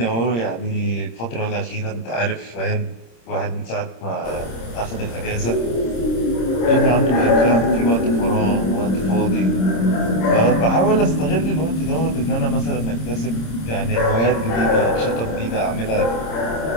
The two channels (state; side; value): late; right; 26 ms